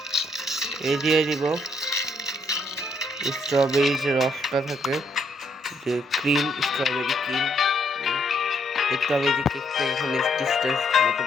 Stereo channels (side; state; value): both; normal; correlation 0.72